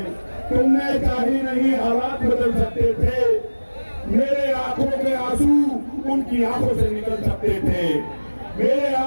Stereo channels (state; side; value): inverted; both; correlation -1.00